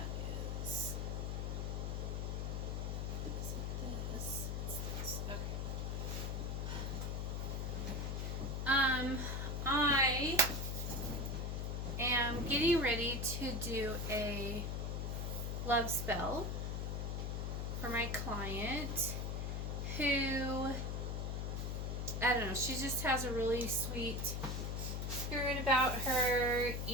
is. Is it this? It's this. Okay. I am getting ready to do a love spell for my client who, I don't know, she just has a really sweet spirit about her,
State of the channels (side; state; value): left; noise; hum, 1 dB below the sound